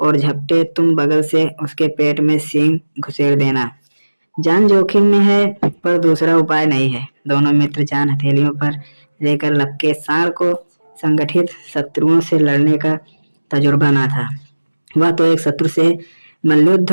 झपटे, तुम बगल से उसके पेट में सींग घुसेड़ देना। जान जोखिम में है, पर दूसरा उपाय नहीं है। दोनों मित्र जान हथेलियों पर लेकर लपके। सांड को संगठित शत्रुओं से लड़ने का तजुर्बा ना था। वह तो एक शत्रु से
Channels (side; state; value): both; inverted; correlation -1.00